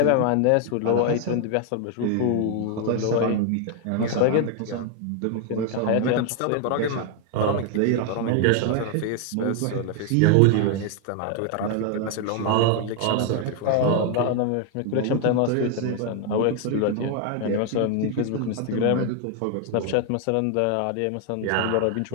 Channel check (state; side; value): different; both; correlation 0.01